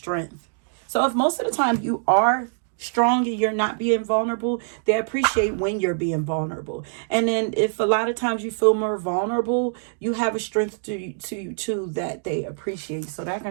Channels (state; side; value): silent; left; digital silence